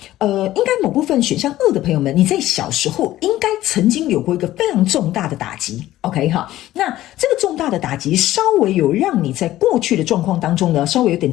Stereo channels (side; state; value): right; quieter; 14.8 dB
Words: 应该某部分选项2的朋友们，你在小时候应该曾经有过一个非常重大的打击 ，OK 哈。那这个重大的打击稍微有让你在过去的状况当中呢，稍微有点